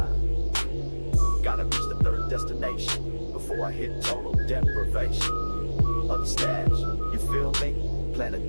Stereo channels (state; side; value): inverted; both; correlation -1.00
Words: Gotta reach the third destination before I hit total deprivation of the stash. You feel me? Planet